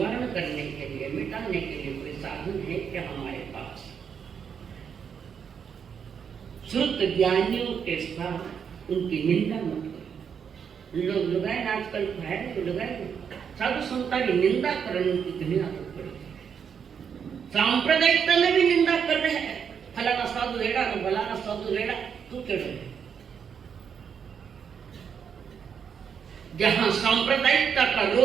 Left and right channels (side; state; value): left; quieter; 7.2 dB